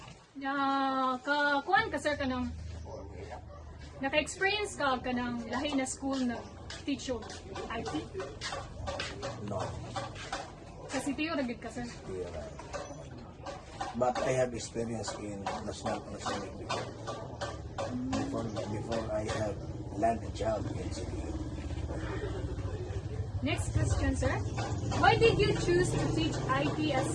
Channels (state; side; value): identical; both; correlation 1.00